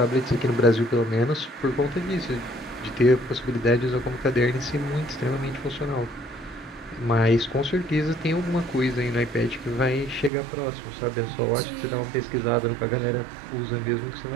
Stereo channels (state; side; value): drops out; left; at 10.3 s